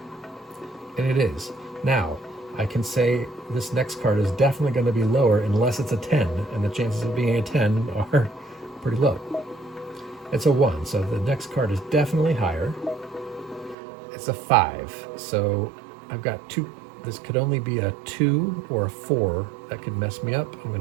And it is. Now, I can say this next card is definitely going to be lower unless it's a 10, and the chances of being a 10 are pretty low. It's a 1, so the next card is definitely higher. It's a 5, so I've got 2. This could only be a 2 or a 4 that could mess me up. I'm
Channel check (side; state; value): left; drops out; at 13.8 s